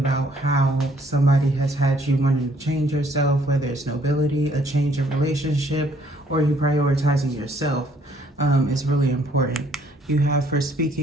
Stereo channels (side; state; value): both; normal; correlation 0.64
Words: how somebody has had you wanting to change yourself, whether it's nobility, a change in relationship, or you prioritizing yourself is really important. You have for